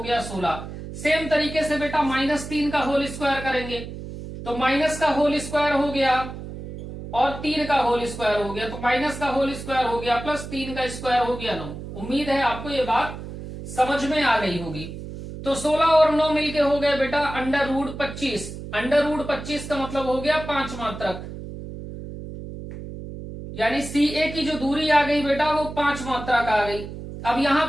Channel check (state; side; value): noise; right; hum, 10 dB below the sound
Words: 16। सेम तरीके से बेटा -3 का होल स्क्वायर करेंगे तो माइनस का होल स्क्वायर हो गया और 3 का होल स्क्वायर हो गया, तो माइनस का होल स्क्वायर हो गया प्लस 3 का स्क्वायर हो गया 9। उम्मीद है आपको ये बात समझ में आ गई होगी। तो 16 और 9 मिलके हो गए बेटा √25। √25 का मतलब हो गया 5 मात्रक, यानी सी ए की जो दूरी आ गई बेटा वो 5 मात्रक आ गई। अब यहां